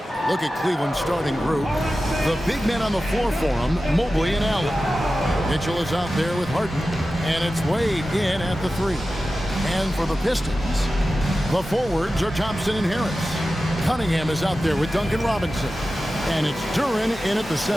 Look at Cleveland's starting group. The big men on the floor for them, Mobley and Allen. Mitchell is out there with Harden, and it's Wade in at the 3. And for the Pistons, the forwards are Thompson and Harris. Cunningham is out there with Duncan Robinson. And it's Duren in at the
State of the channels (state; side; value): normal; both; correlation 0.94